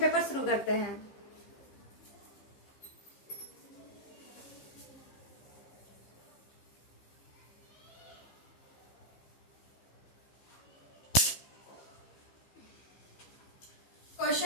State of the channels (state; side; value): late; right; 15 ms